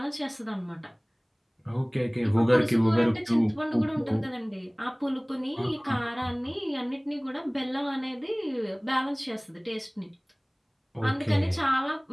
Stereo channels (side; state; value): both; identical; correlation 1.00